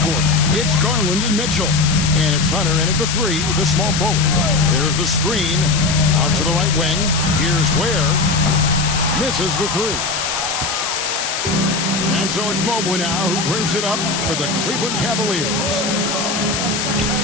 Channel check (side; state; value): left; noise; hiss, 3 dB below the sound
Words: It's Garland and Mitchell. And it's Hunter in at the three, the small forward. There's the screen. Out to the right wing. Here's Ware. Misses the three. And so it's Mobley now who brings it up for the Cleveland Cavaliers.